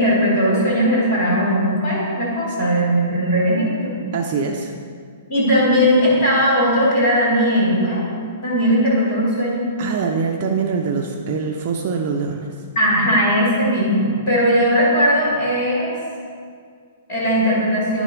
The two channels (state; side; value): inverted; both; correlation -0.38